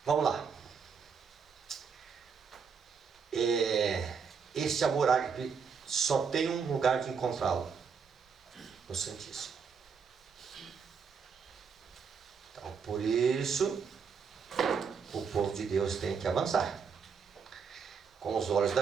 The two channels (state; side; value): quieter; left; 6.1 dB